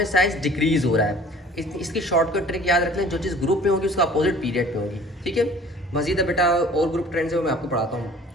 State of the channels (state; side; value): normal; both; correlation 0.48